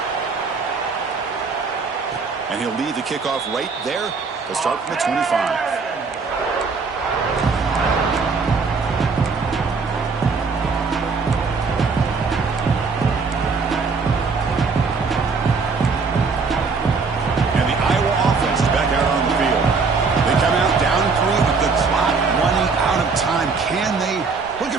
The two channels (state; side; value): quieter; left; 4.7 dB